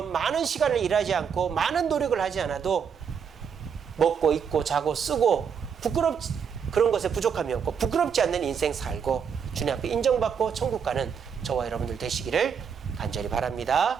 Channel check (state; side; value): quieter; left; 7.0 dB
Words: 많은 시간을 일하지 않고 많은 노력을 하지 않아도 먹고 입고 자고 쓰고 그런 것에 부족함이 없고 부끄럽지 않는 인생 살고 주님 앞에 인정받고 천국 가는 저와 여러분들 되시기를 간절히 바랍니다.